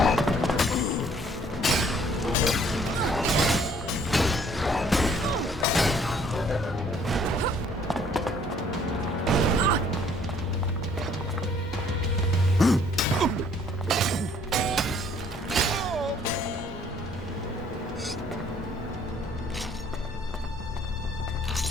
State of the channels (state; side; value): normal; both; correlation 0.60